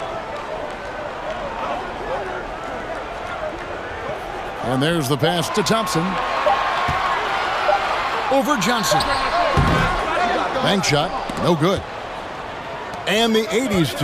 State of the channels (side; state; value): both; identical; correlation 1.00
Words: And there's the pass to Thompson. Over Johnson. Bank shot, no good. And the 80s